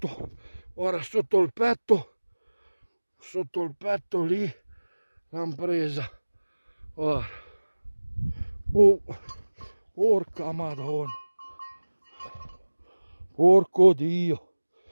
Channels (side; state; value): both; inverted; correlation -1.00